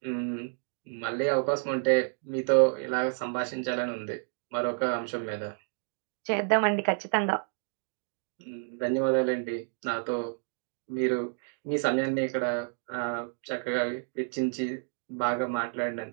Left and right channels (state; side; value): silent; left; 57 dB below the other